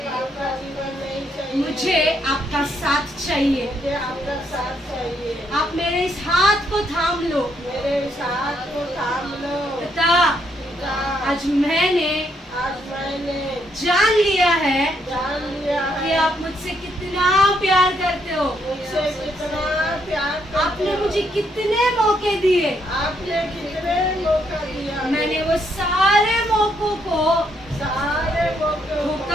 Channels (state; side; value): normal; both; correlation 0.74